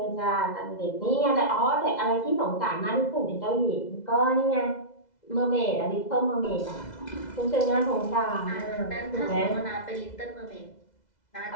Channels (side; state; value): right; late; 2.0 ms